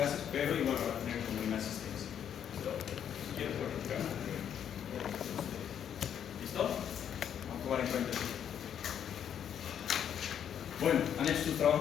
pero igual van a tener como una asistencia. ¿Listo? Si quieren pueden entrar. ¿Listo? Vamos a tomar en cuenta eso. Bueno, ¿han hecho sus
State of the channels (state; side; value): quieter; right; 9.0 dB